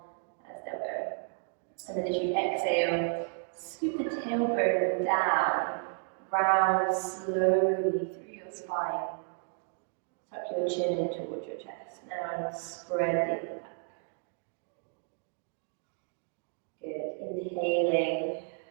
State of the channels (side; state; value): left; silent; 56 dB below the other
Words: as they'll go. And then as you exhale, scoop the tailbone down, round slowly through your spine. Tuck your chin in towards your chest. Now spread the upper back. Good. Inhaling,